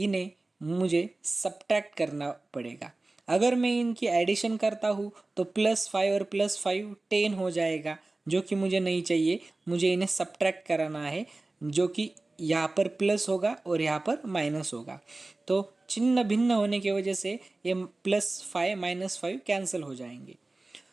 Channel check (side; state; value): left; quieter; 3.1 dB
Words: मुझे सब्ट्रैक्ट करना पड़ेगा। अगर मैं इनकी एडिशन करता हूँ तो +5 और +5 10 हो जाएगा, जो कि मुझे नहीं चाहिए। मुझे इन्हें सब्ट्रैक्ट कराना है, जो कि यहाँ पर प्लस होगा और यहाँ पर माइनस होगा। तो चिन्ह भिन्न होने की वजह से ये +5 -5 कैंसिल हो जाएंगे।